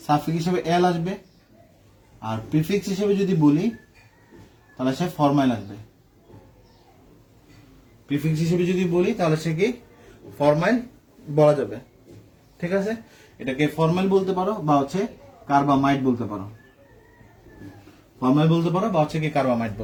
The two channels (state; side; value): identical; both; correlation 1.00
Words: সাফিক্স হিসেবে এল আসবে, আর প্রিফিক্স হিসেবে যদি বলি তাহলে সে ফরমাইল আসবে। প্রিফিক্স হিসেবে যদি বলি তাহলে সে কি ফরমাইল বলা যাবে। ঠিক আছে, এটাকে ফরমাইল বলতে পারো বা হচ্ছে কার্বামাইড বলতে পারো, ফরমাইল বলতে পারো বা হচ্ছে কি কার্বামাইড